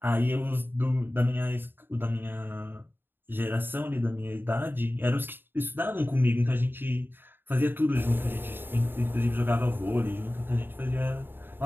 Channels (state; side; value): late; left; 0.098 ms